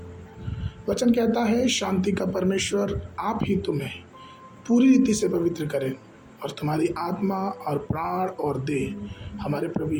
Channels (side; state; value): both; identical; correlation 1.00